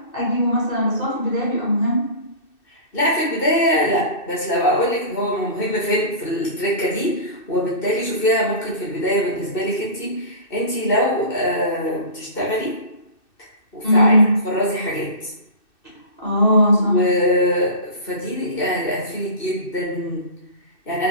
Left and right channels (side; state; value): right; late; 2.6 ms